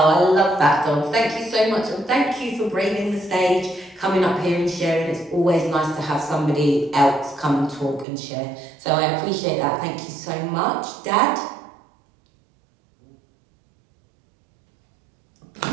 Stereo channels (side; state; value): left; drops out; at 8.1 s